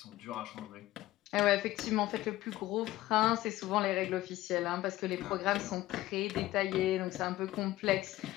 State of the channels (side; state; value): right; quieter; 16.2 dB